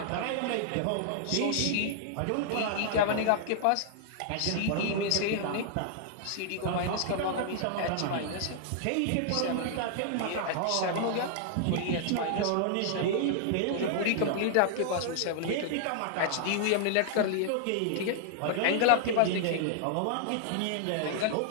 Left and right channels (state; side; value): different; both; correlation -0.01